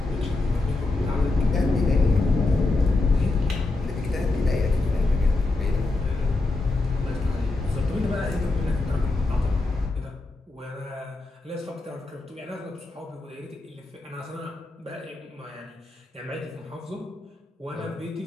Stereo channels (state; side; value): quieter; right; 3.1 dB